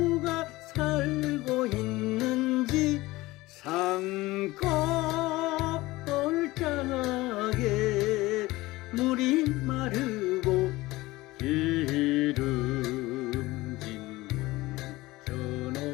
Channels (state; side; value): quieter; right; 19.4 dB